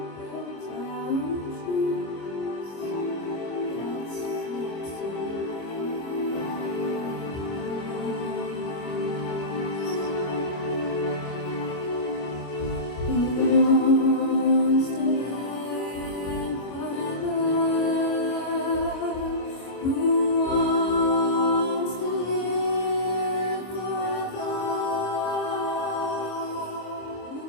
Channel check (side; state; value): right; late; 25 ms